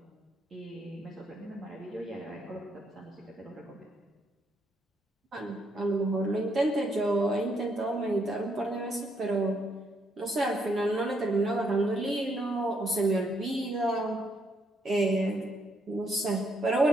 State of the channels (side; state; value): both; normal; correlation 0.74